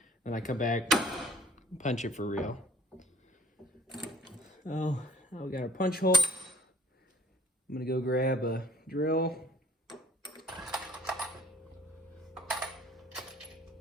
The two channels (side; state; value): both; normal; correlation 0.54